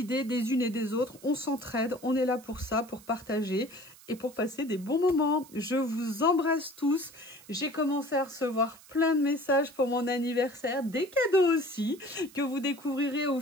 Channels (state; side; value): noise; right; hiss, 22 dB below the sound